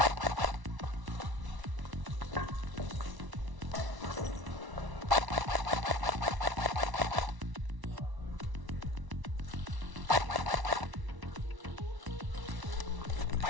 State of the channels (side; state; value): left; late; 1.0 ms